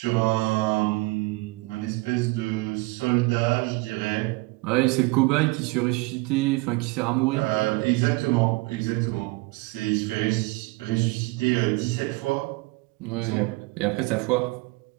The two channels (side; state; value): left; quieter; 24.0 dB